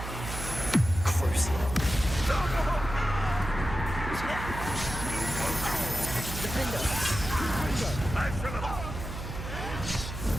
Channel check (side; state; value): right; noise; hum, 7 dB below the sound